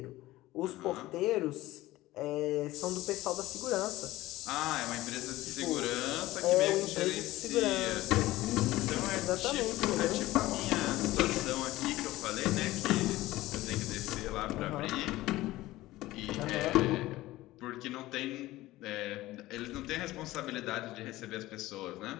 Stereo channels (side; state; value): right; quieter; 17.2 dB